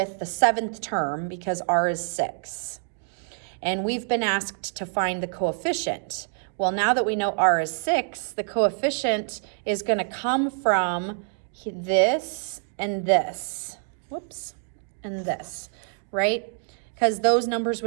the 7th term because r is 6. And we've been asked to find the coefficient. Well, now that we know r is 6, the coefficient is going to come from this and this. Whoops, and this, right? Because those numbers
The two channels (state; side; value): silent; left; 61 dB below the other